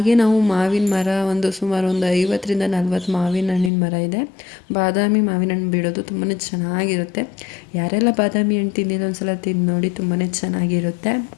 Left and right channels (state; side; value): drops out; right; at 3.7 s